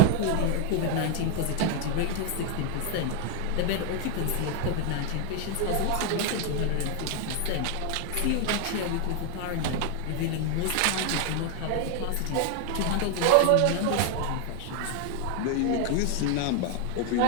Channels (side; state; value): both; different; correlation 0.01